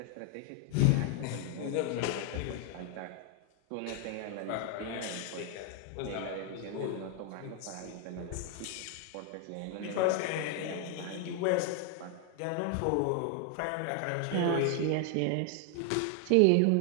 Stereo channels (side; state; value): both; different; correlation 0.00